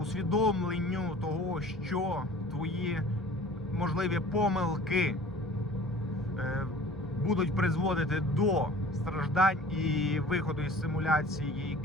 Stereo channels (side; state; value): both; normal; correlation 0.46